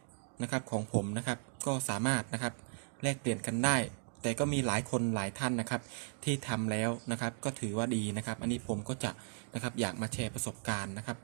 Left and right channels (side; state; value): left; silent; 54 dB below the other